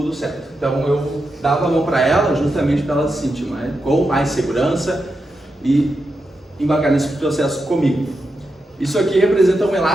certo. Então eu dava a mão para ela justamente para ela se sentir com mais segurança e embarcar nesse processo comigo. Isso aqui representa um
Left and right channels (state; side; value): normal; both; correlation 0.87